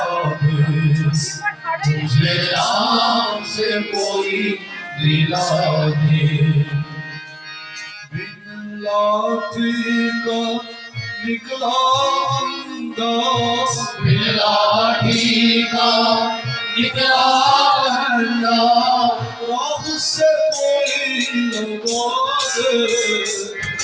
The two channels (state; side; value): identical; both; correlation 1.00